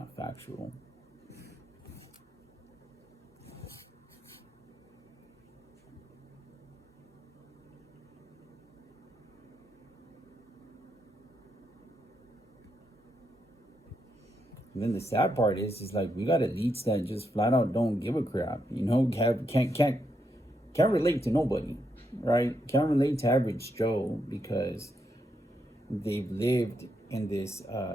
factual. And then the sad part is like we got elites that just flat out don't give a crap. Can't relate to nobody, right? Can't relate to average Joe because they've lived in this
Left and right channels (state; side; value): normal; both; correlation 0.80